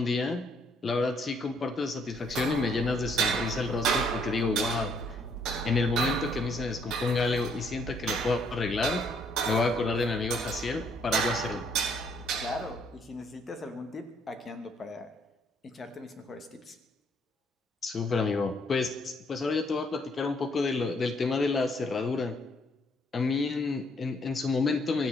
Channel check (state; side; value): normal; both; correlation 0.67